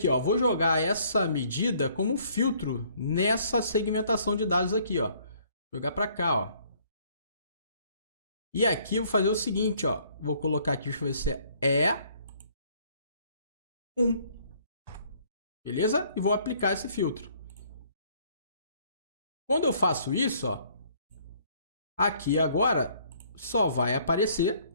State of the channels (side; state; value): both; inverted; correlation -0.61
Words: ó? Vou jogar essa medida como filtro nessa segmentação de dados aqui, ó. Jogar para cá, ó. E aqui eu vou fazer o seguinte, ó. Vou colocar aqui, deixa eu ver se é 1. Beleza? E vou aplicar esse filtro. Quando eu faço isso, ó, aqui agora só vai aparecer